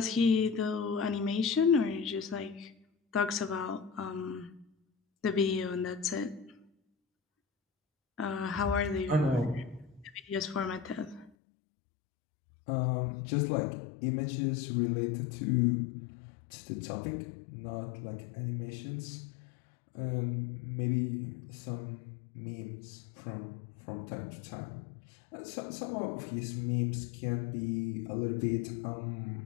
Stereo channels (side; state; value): right; drops out; at 11.3 s